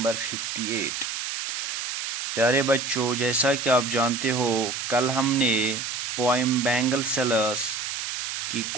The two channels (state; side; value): noise; right; hiss, 4 dB below the sound